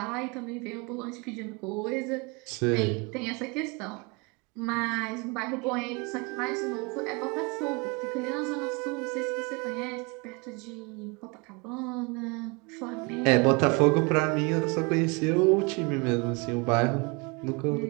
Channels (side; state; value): left; quieter; 29.4 dB